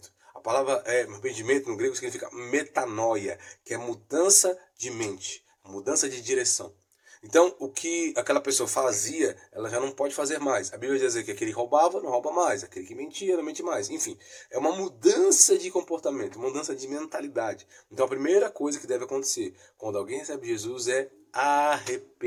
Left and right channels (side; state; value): both; identical; correlation 1.00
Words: A palavra arrependimento no grego significa metanoia, que é mudança de mente, mudança de direção. Então, o que aquela pessoa fazia, ela já não pode fazer mais. A Bíblia diz que aquele que roubava, não rouba mais. Aquele que mentia, não mente mais. Enfim, é uma mudança de comportamento, uma mudança de mentalidade. Então, a primeira coisa que deve acontecer quando alguém recebe Jesus é